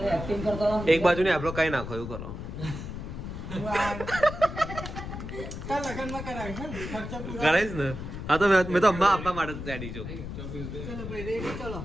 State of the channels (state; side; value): noise; left; rumble, 8 dB below the sound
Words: એક્ટિંગ કરતો રહો. એક બાજુ ને આપણો કઈ નાખો એવું કરો કાલ લગનમાં કરાવીશ ને ખર્ચો પૂરો કરાઈશ ને હા તો મેં તો અમ્મા આપવા માટે રેડી છું ચલો ભાઈ રેડી ચલો